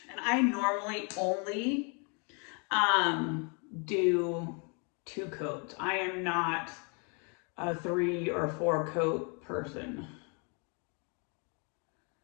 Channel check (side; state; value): right; quieter; 35.8 dB